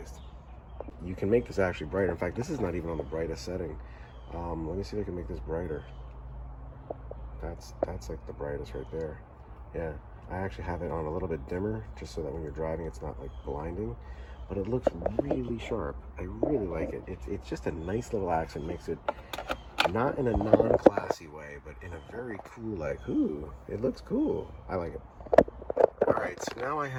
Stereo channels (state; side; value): identical; both; correlation 1.00